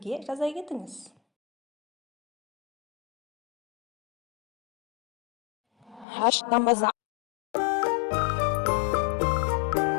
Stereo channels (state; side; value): drops out; right; at 6.1 s